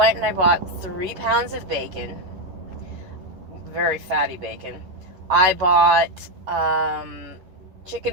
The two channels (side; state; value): left; late; 11 ms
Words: and I bought 3 pounds of bacon, very fatty bacon. I bought